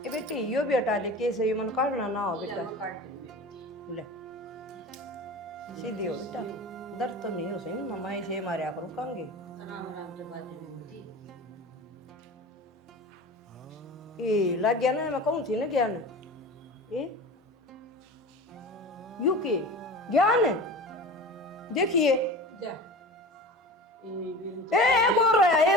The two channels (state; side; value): normal; both; correlation 0.34